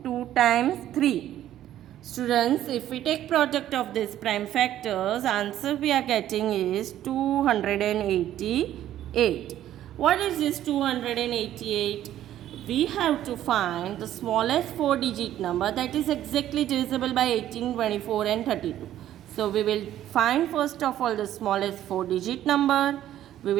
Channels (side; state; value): left; quieter; 12.2 dB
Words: 2 times 3. Students, if we take product of these prime factors, answer we are getting is 288. What is this 288? We have to find the smallest 4-digit number that is exactly divisible by 18, 24 and 32. So we will find first of all the smallest 4-digit number. We